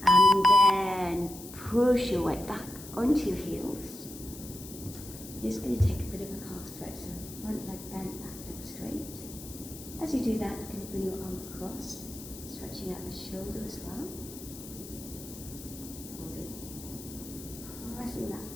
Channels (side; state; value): left; noise; hiss, 14 dB below the sound